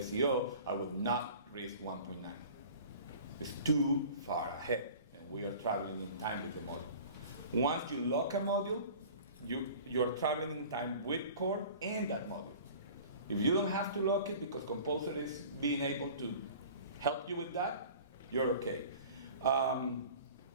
I will not risk 1.9. It's too far ahead, and we are traveling in time with the module. Once you lock a module, you're traveling in time with core and that module. If you don't have to lock it because Composer is being able to help you with that, you're okay.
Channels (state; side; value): inverted; both; correlation -0.43